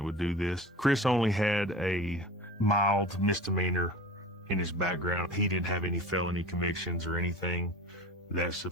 would do this. Chris only had a mild misdemeanor in his background. He didn't have any felony convictions or anything that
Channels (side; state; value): both; normal; correlation 0.36